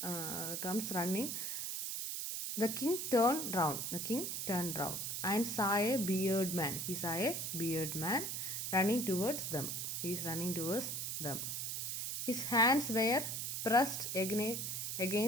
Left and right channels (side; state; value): right; noise; hiss, 3 dB below the sound